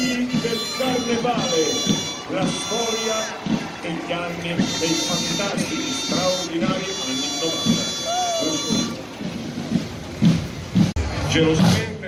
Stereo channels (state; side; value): identical; both; correlation 1.00